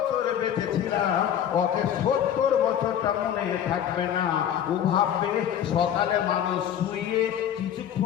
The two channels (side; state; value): right; quieter; 9.8 dB